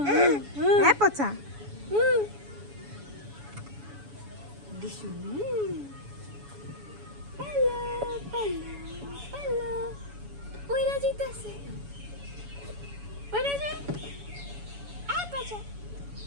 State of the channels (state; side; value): late; left; 7.1 ms